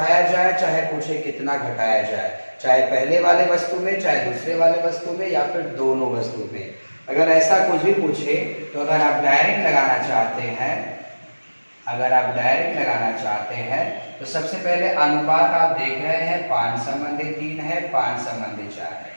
जाए, चाहे पूछे कितना घटाया जाए, चाहे पहले वाले वस्तु में, चाहे दूसरे वाले वस्तु में, या फिर दोनों वस्तु में। अगर ऐसा कुछ भी पूछे तो अगर आप डायरेक्ट लगाना चाहते हैं तो सबसे पहले अनुपात आप देख रहे हैं 5:3 है, 5:4 है।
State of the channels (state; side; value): inverted; both; correlation -1.00